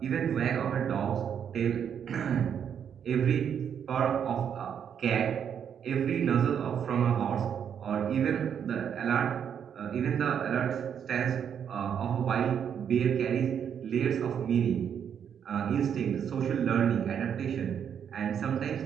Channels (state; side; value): quieter; left; 8.2 dB